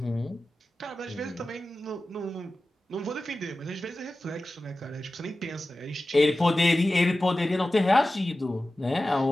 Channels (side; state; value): both; normal; correlation 0.95